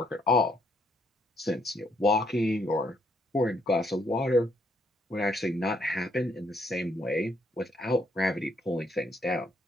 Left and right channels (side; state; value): both; normal; correlation 0.71